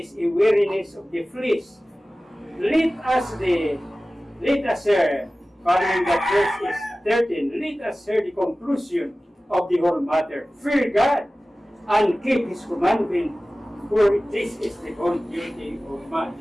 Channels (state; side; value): normal; both; correlation 0.97